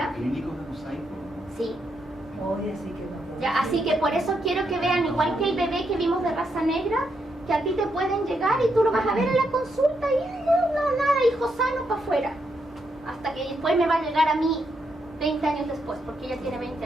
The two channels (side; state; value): both; normal; correlation 0.80